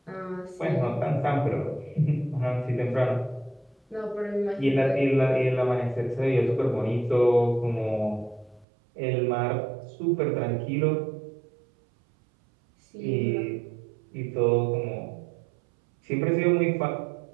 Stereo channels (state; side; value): drops out; left; at 8.7 s